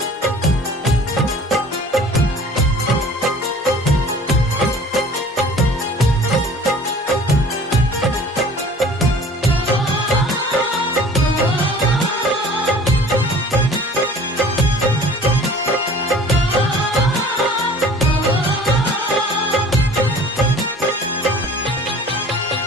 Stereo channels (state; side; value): normal; both; correlation 0.47